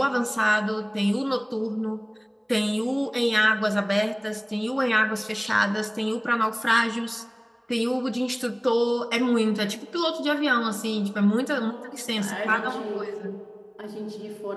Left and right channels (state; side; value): identical; both; correlation 1.00